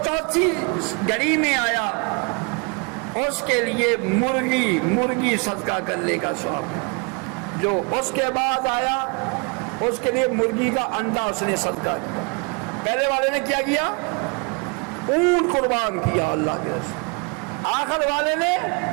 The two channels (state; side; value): quieter; left; 33.6 dB